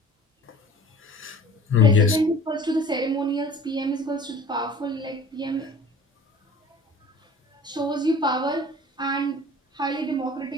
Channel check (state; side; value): normal; both; correlation 0.45